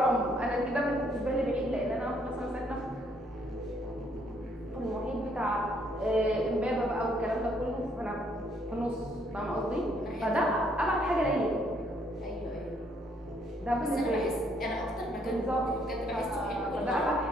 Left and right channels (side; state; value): both; normal; correlation 0.68